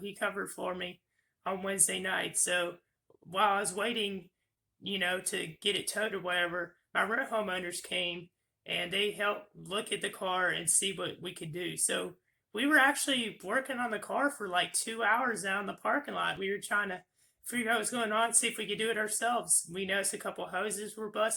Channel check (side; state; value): both; identical; correlation 1.00